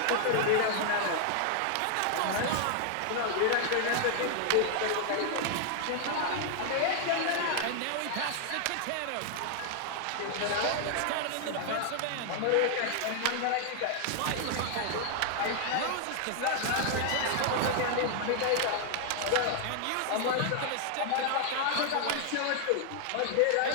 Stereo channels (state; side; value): different; both; correlation 0.00